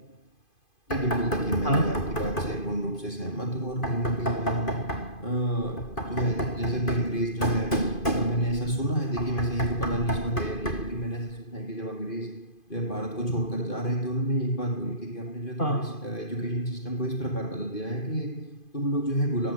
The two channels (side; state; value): right; late; 2.5 ms